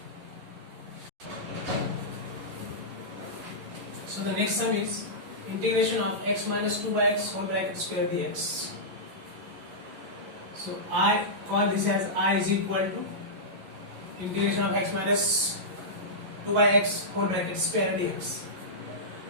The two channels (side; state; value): left; late; 11 ms